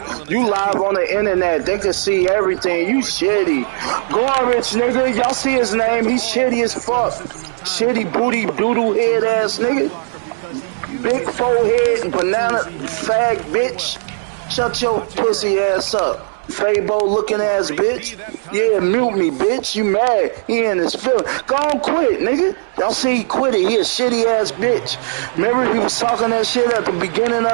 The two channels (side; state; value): left; silent; digital silence